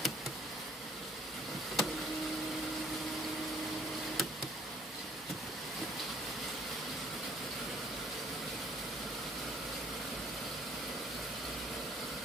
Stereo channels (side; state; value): both; normal; correlation 0.59